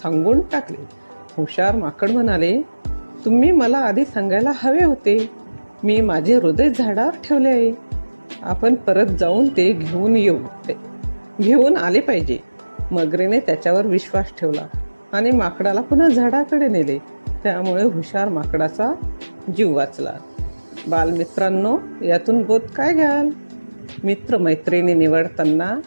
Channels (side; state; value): both; inverted; correlation -1.00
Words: टाकले. हुशार माकड म्हणाले, तुम्ही मला आधी सांगायला हवे होते. मी माझे हृदय झाडावर ठेवले आहे. आपण परत जाऊन ते घेऊन आले पाहिजे. मगरीने त्याच्यावर विश्वास ठेवला आणि माकडाला पुन्हा झाडाकडे नेले. त्यामुळे हुशार माकडाचा जीव वाचला. बालमित्रांनो, यातून बोध काय घ्याल? मित्रमैत्रिणी निवडताना